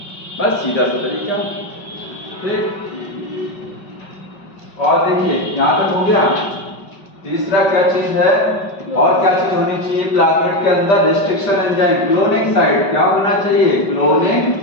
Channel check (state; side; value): late; right; 5.3 ms